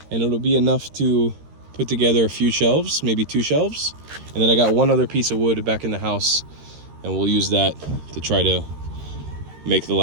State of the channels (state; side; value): late; left; 13 ms